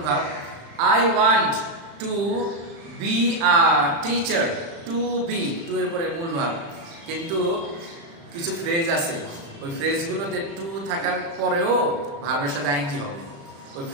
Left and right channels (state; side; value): late; left; 36 ms